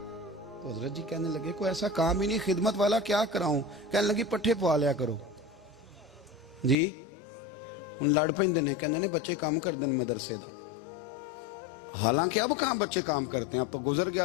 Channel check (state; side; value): drops out; right; at 6.8 s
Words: تو حضرت جی کہنے لگے کوئی ایسا کام ہی نہیں، خدمت والا کیا کراؤں؟ کہنے لگی پٹھے پوا لیا کرو جی، ہن لڑ پیندے نے، کہنے نے بچے کام کر دیں مدرسے دا، حالانکہ اب کہاں بچے کام کرتے ہیں، اب تو گزر